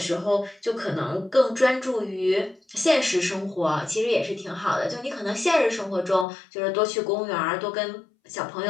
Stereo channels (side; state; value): right; drops out; at 6.2 s